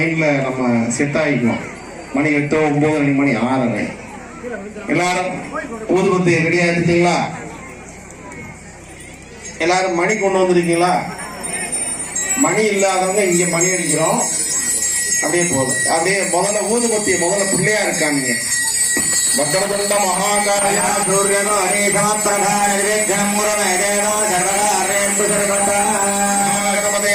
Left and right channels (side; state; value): both; identical; correlation 1.00